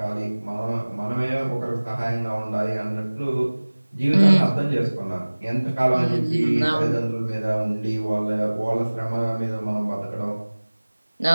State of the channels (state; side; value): inverted; both; correlation -1.00